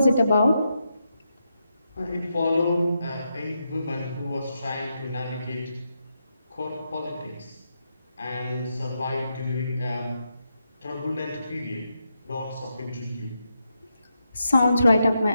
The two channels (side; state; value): both; inverted; correlation -0.84